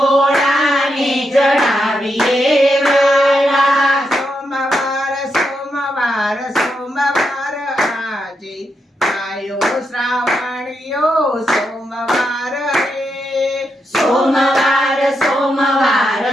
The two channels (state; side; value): normal; both; correlation 0.83